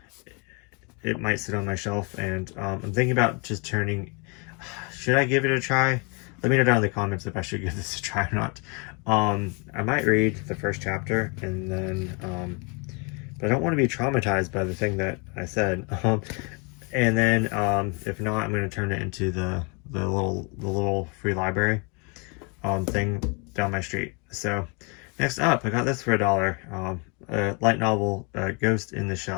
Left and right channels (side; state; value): right; quieter; 32.9 dB